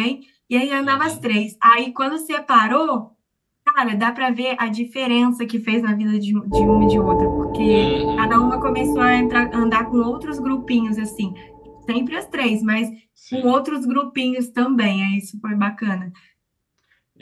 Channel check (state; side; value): identical; both; correlation 1.00